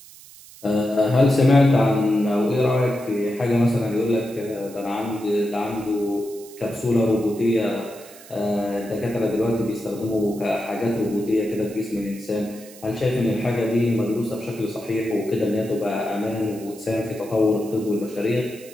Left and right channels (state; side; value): noise; right; hiss, 20 dB below the sound